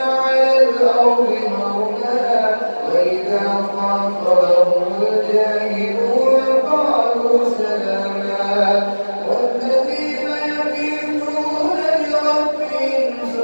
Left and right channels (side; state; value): both; inverted; correlation -1.00